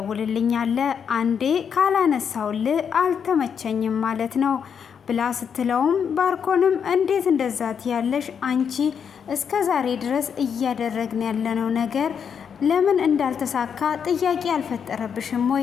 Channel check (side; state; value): right; quieter; 7.2 dB